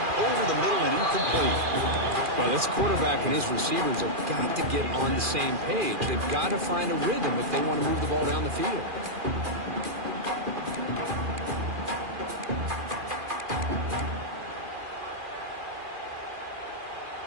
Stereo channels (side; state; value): left; late; 2.4 ms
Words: Over the middle and incomplete. Well, this quarterback and his receivers have got to get on the same page. They've got to find a rhythm if they want to move the ball down the field.